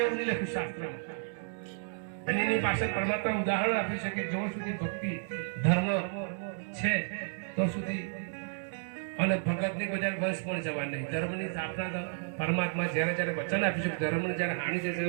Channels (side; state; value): left; silent; digital silence